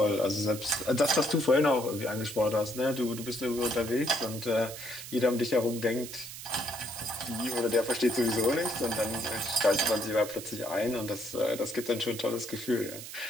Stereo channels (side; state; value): right; noise; hiss, 11 dB below the sound